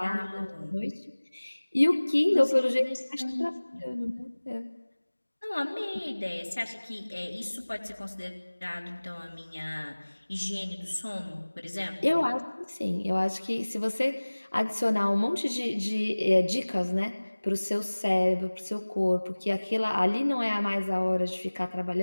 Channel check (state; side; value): inverted; both; correlation -1.00